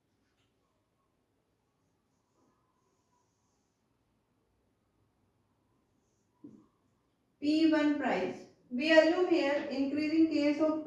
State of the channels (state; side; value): identical; both; correlation 1.00